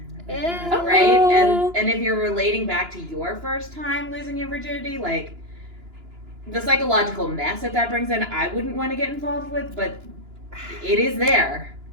Yeah. Right? Oh. And if you're relating back to your first time losing your virginity, like the psychological mess that brings in, I wouldn't want to get involved with, but it is there.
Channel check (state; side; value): late; left; 2.9 ms